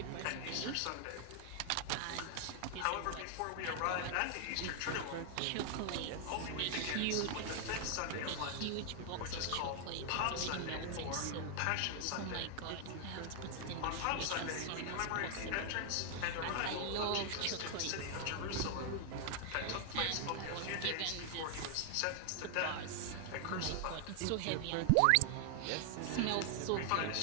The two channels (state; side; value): different; both; correlation 0.00